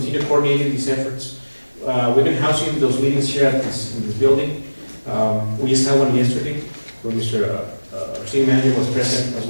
coordinating these efforts. We've been housing those meetings here in this building. We just had one yesterday where Mr. RCM manager was present, as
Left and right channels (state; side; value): inverted; both; correlation -1.00